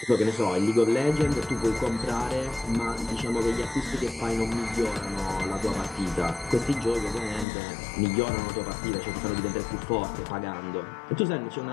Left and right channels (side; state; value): right; drops out; at 7.5 s